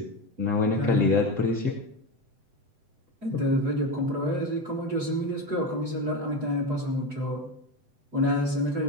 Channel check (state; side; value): late; left; 7.8 ms